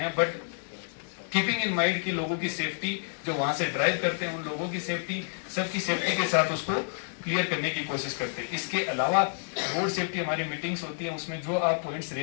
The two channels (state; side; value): silent; right; digital silence